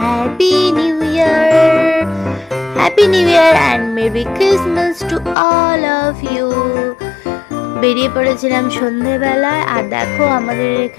New Year. Happy New Year and Merry Christmas to all of you. বেরিয়ে পড়েছিলাম সন্ধেবেলায়, আর দেখো আমাদের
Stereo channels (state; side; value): drops out; right; at 5.4 s